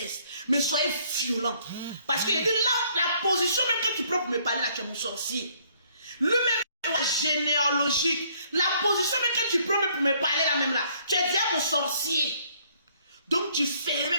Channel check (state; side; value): inverted; both; correlation -0.64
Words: mais soyez violents. Parce qu'il dit, là, la position même que tu prends pour me parler, là, tu es mon sorcier. Lui-même, généalogique. La position même que tu prends même pour me parler, là, même là, tu es déjà mon sorcier. Donc tu fais